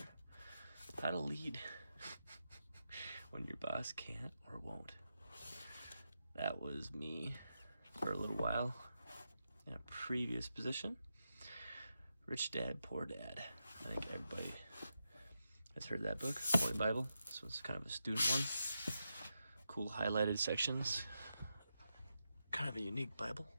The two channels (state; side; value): inverted; both; correlation -0.87